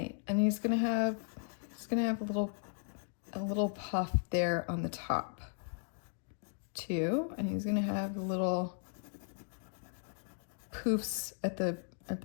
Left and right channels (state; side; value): silent; right; digital silence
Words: and he's gonna have a little puff there on the top too, and he's gonna have little poofs at the